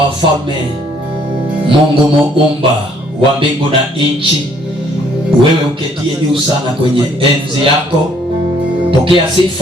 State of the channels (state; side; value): normal; both; correlation 0.64